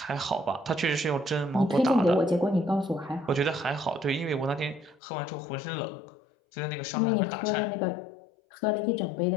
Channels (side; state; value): right; drops out; at 5.0 s